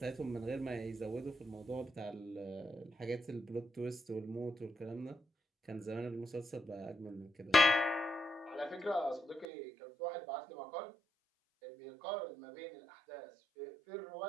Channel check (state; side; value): drops out; left; at 9.5 s